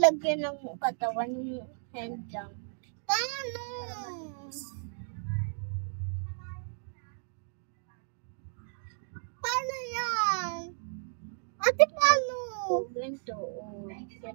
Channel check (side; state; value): left; silent; digital silence